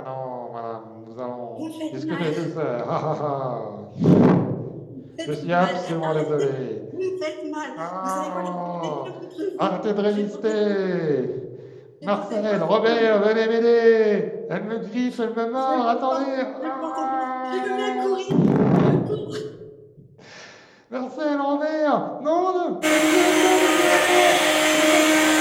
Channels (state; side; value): identical; both; correlation 1.00